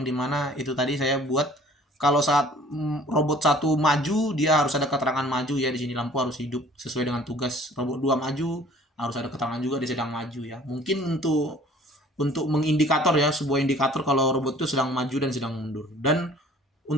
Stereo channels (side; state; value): both; normal; correlation 0.52